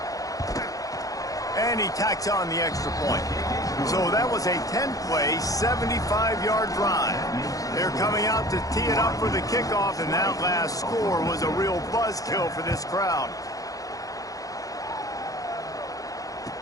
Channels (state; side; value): late; right; 0.17 ms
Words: And he tacks on the extra point. So that was a 10-play, 75-yard drive. They're coming out to tee it up for the kickoff, and that last score was a real buzzkill for this crowd.